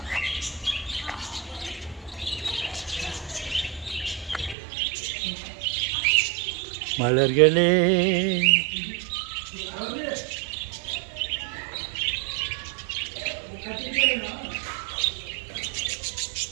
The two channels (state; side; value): drops out; left; at 4.5 s